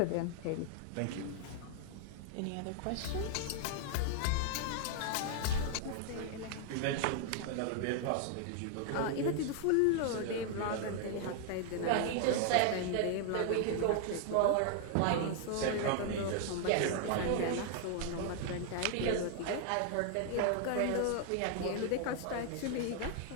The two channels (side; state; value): both; different; correlation 0.00